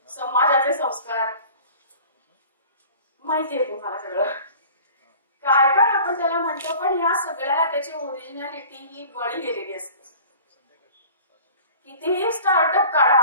समाजाचे संस्कार. माहितीये तुम्हाला सगळं काय काय आपण त्याला म्हणतो, पण या सगळ्याला त्याची ओरिजिनॅलिटी ही बळी गेलेली असते. कितीही स्टार्टअप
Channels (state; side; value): inverted; both; correlation -0.44